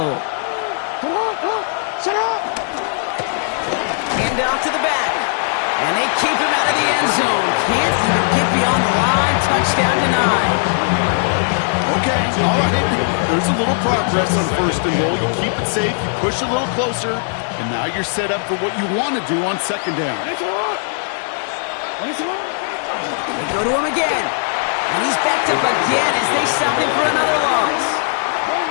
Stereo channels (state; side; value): silent; right; 67 dB below the other